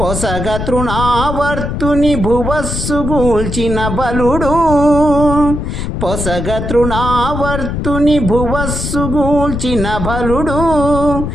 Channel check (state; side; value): noise; left; rumble, 4 dB below the sound